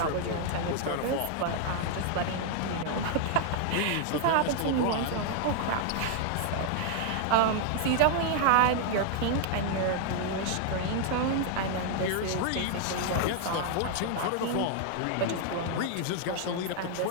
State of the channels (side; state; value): both; different; correlation 0.00